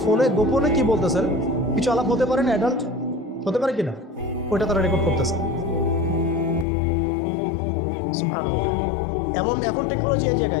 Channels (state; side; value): drops out; right; at 6.7 s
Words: ফোনে গোপনে কি বলতেছেন। কিছু আলাপ হতে পারে না, অ্যাডাল্ট হতে পারে কিনা, ওইটা তারা রেকর্ড করতেছে। এখন টেকনোলজি এই